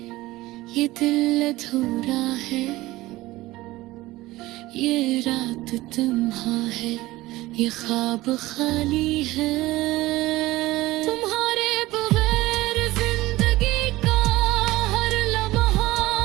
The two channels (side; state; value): left; quieter; 18.3 dB